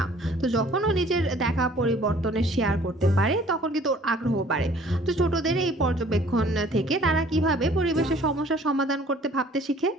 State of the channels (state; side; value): normal; both; correlation 0.55